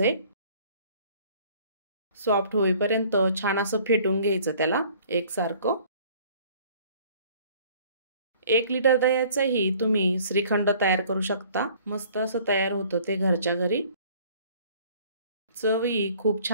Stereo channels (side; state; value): both; inverted; correlation -0.54